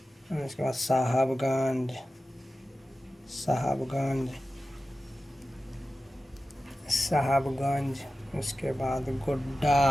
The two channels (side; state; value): both; normal; correlation 0.94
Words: उसके बाद साहबगंज, उसके बाद